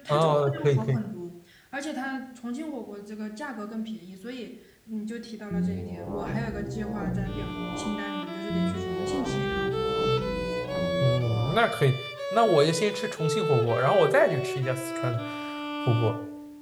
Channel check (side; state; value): both; identical; correlation 1.00